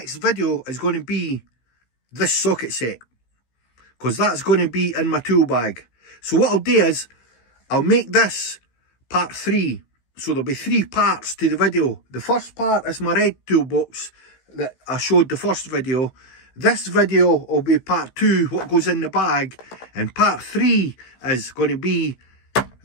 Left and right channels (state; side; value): late; right; 16 ms